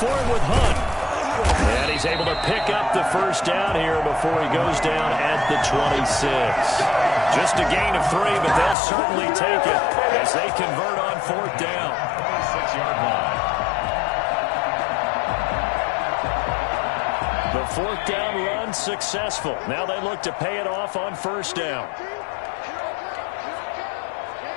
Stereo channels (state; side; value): drops out; right; at 8.8 s